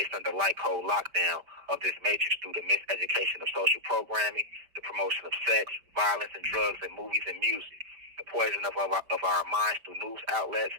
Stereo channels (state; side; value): late; left; 5.3 ms